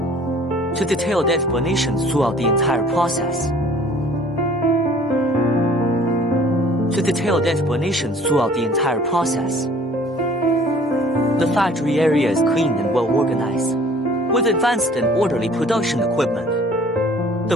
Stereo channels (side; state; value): both; normal; correlation 0.52